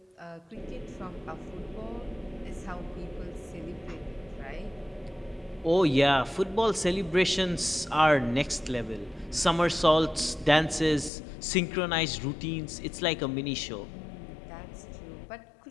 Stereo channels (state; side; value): drops out; right; at 11.1 s